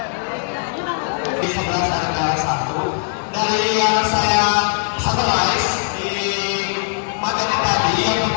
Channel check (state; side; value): silent; right; 66 dB below the other